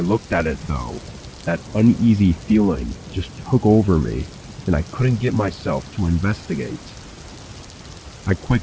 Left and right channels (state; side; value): identical; both; correlation 1.00